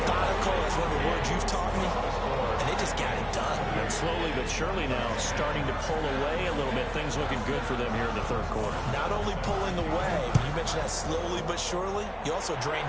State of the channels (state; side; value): identical; both; correlation 1.00